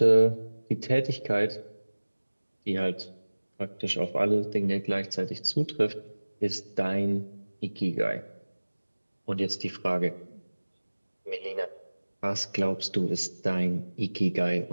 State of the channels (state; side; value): inverted; both; correlation -1.00